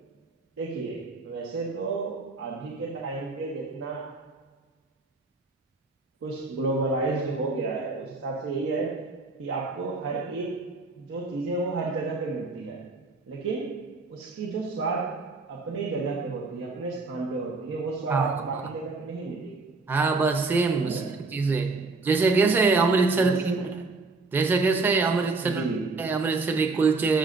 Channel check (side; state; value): left; quieter; 3.7 dB